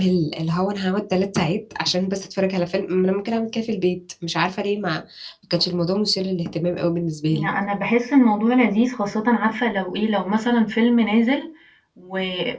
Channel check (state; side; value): identical; both; correlation 1.00